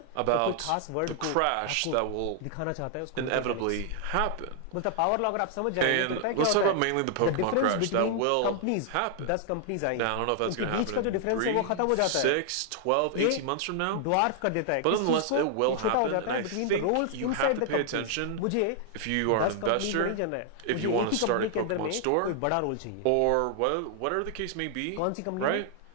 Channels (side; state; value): both; different; correlation 0.00